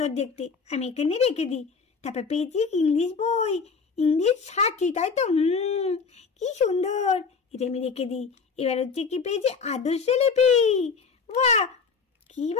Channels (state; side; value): quieter; right; 5.2 dB